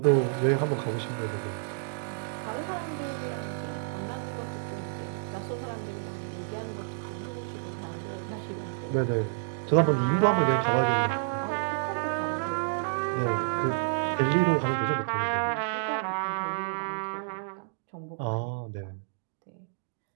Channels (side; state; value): left; silent; digital silence